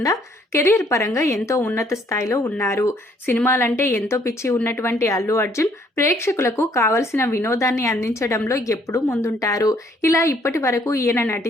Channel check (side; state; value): both; normal; correlation 0.65